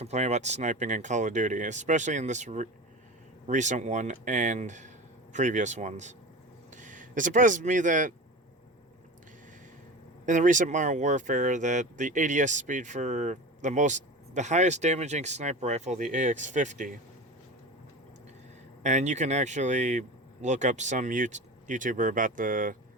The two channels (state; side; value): normal; both; correlation 0.31